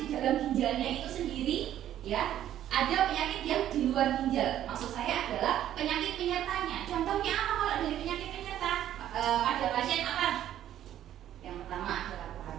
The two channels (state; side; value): quieter; left; 11.7 dB